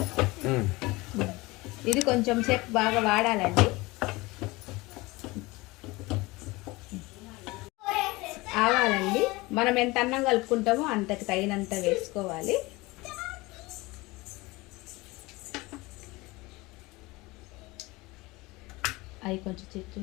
ఇది కొంచెం సేపు బాగా వాడాలండి. ఆవాలండి మనం ఎంత అన్నం కలుపుకుంటామో అంతకు తగినంత వేసుకోవాలి. అవి కొంచెం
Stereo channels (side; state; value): right; quieter; 22.2 dB